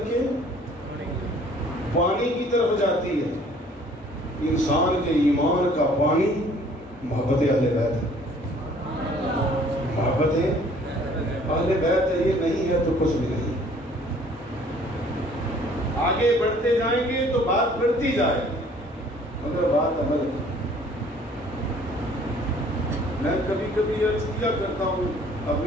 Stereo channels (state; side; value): normal; both; correlation 0.56